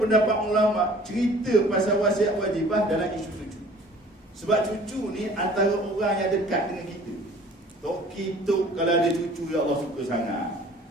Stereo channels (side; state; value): both; normal; correlation 0.50